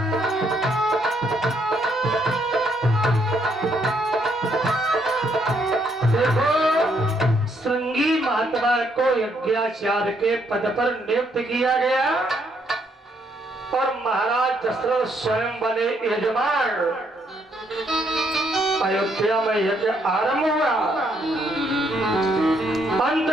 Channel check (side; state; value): both; normal; correlation 0.72